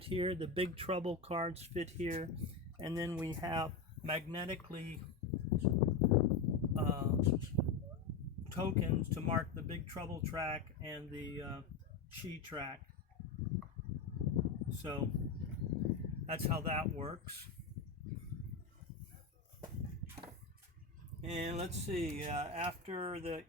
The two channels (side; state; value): right; quieter; 4.7 dB